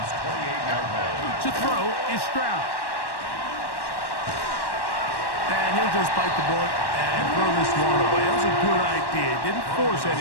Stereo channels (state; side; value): late; right; 1.1 ms